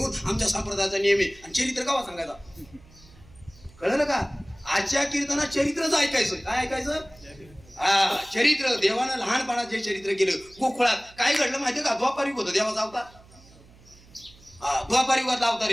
आमच्या संप्रदायाचा नियम आहे आणि चरित्र कावा सांगायचा कळलं का आजच्या कीर्तनात चरित्रच ऐकायचं काय ऐकायचं हा चरित्र देवानं लहानपणात जे चरित्र केलं गोकुळात काय घडलं माहितीये का द्वापार युग होतं देवाचा अवतार द्वापार युगातला अवतार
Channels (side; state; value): right; noise; hum, 25 dB below the sound